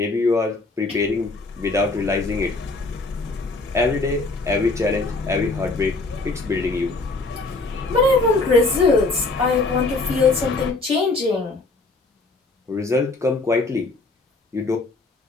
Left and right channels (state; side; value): quieter; right; 3.4 dB